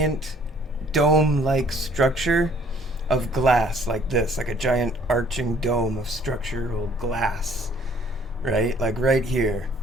dome-like structure of glass like this, like a giant arching dome of structural glass, right? Like right here,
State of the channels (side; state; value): both; normal; correlation 0.59